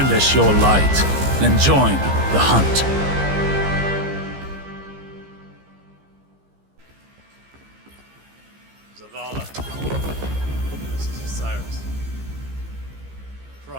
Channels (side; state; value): left; late; 15 ms